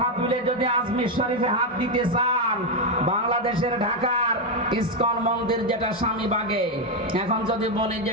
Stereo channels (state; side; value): normal; both; correlation 0.05